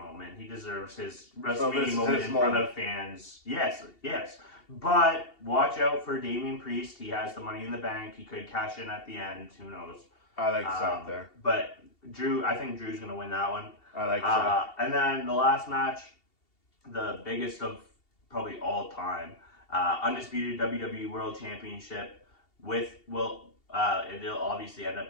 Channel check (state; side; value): late; right; 2.7 ms